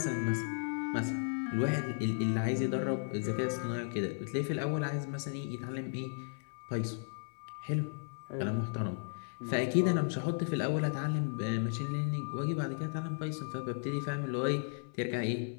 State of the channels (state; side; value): silent; right; 54 dB below the other